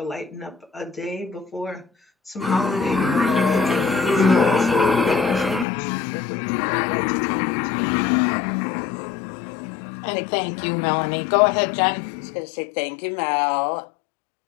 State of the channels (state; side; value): drops out; right; at 5.7 s